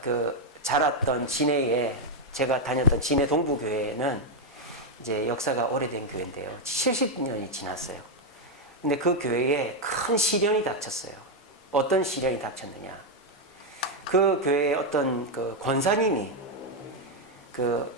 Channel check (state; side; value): normal; both; correlation 0.02